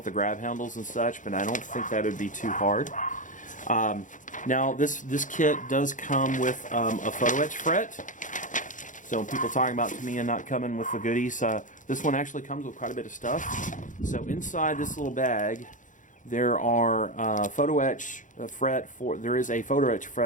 the grab handles and such, but I don't think that would be too hard. Now, this kit does come with a photo etch fret. So people talking about Tamiya not coming with the goodies, this one actually comes with quite a bit of stuff. So inside this little bag, there are photo etch fret for. There is a photo etch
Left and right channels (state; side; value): late; right; 0.37 ms